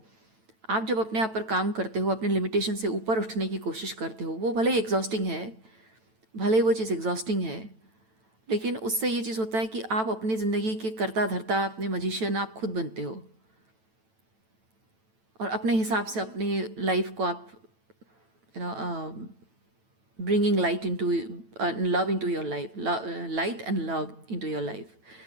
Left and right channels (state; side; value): late; left; 9.1 ms